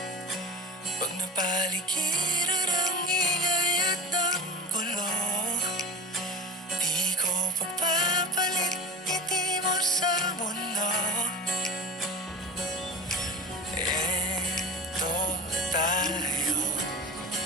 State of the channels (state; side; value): normal; both; correlation 0.33